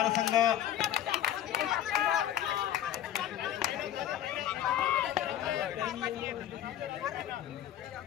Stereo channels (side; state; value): right; quieter; 11.5 dB